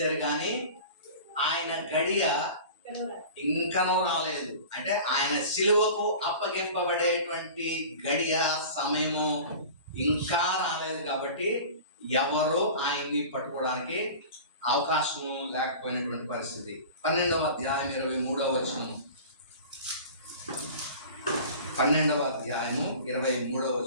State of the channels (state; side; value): inverted; both; correlation -0.38